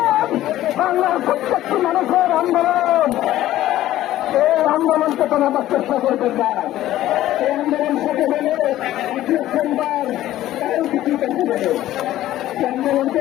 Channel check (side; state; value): right; quieter; 14.1 dB